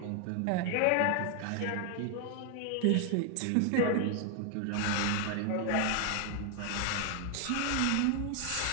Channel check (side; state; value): both; different; correlation 0.00